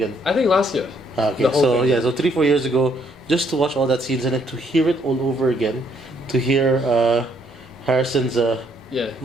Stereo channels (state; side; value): normal; both; correlation 0.69